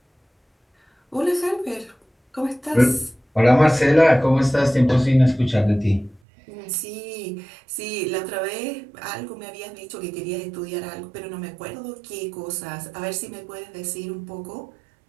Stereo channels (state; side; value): drops out; left; at 6.2 s